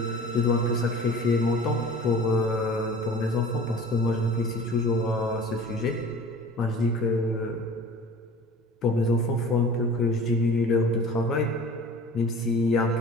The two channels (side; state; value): both; normal; correlation 0.42